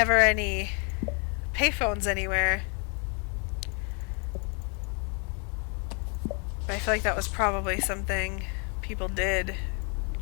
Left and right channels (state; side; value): quieter; right; 36.7 dB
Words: any payphones anywhere. But I feel like that was probably something people did